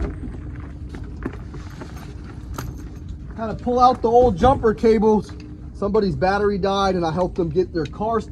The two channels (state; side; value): identical; both; correlation 1.00